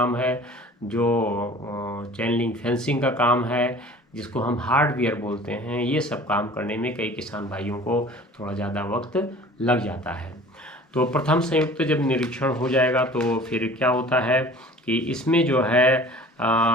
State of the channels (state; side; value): normal; both; correlation 0.46